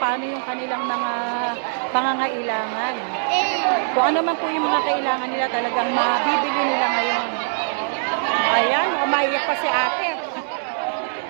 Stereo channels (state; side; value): silent; left; digital silence